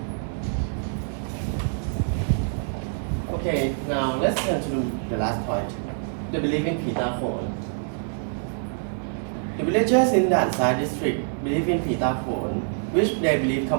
Okay, now let's turn to the last point, the belief in Phi Ta Khon. The villagers in Dan Sai district believe in Phi Ta Khon, which they believe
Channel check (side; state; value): left; silent; 61 dB below the other